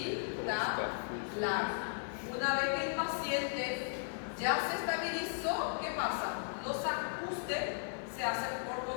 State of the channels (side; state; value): right; silent; digital silence